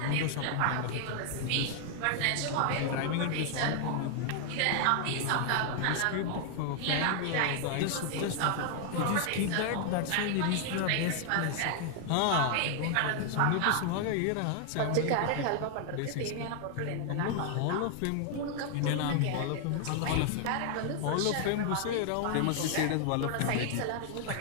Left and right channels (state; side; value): different; both; correlation 0.00